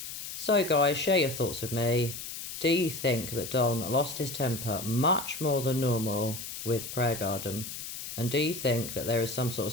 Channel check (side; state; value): left; noise; hiss, 8 dB below the sound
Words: So guys, share your thoughts with me. Do you think that Don lost his temper much more than normal with Prayer Garden? And do you think that there is some sort